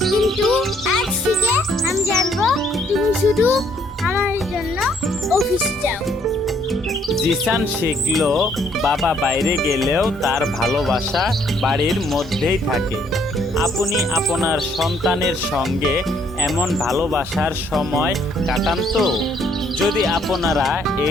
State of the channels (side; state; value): both; normal; correlation 0.66